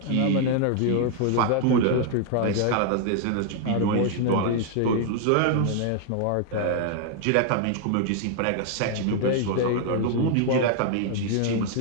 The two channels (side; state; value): both; different; correlation 0.00